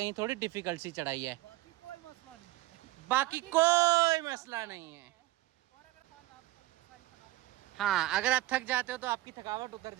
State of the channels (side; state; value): left; quieter; 18.1 dB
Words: थोड़ी डिफिकल्ट सी चढ़ाई है। बाकी कोई मसला नहीं है। हाँ, अगर आप थक जाते हो तो आपकी थकावट उतर